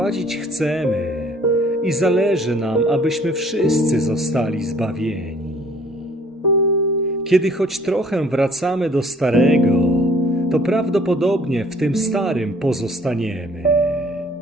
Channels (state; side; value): normal; both; correlation 0.57